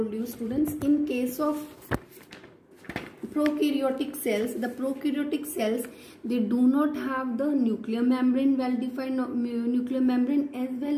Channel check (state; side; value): identical; both; correlation 1.00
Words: you, students. In case of prokaryotic cells, the prokaryotic cells, they do not have the nuclear membrane, well-defined nuclear membrane, as